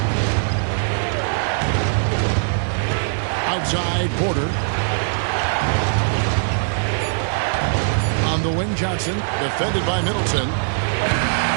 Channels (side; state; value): left; silent; 65 dB below the other